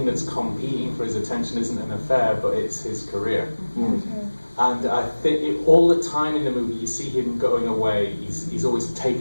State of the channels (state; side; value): inverted; both; correlation -1.00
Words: that's competing for his attention isn't an affair, but it's his career. And I think all the time in the movie, you see him going away. He's always